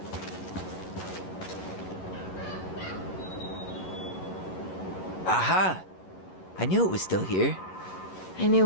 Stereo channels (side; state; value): right; late; 11 ms